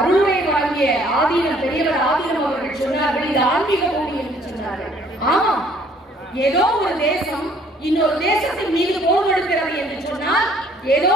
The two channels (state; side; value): normal; both; correlation 0.60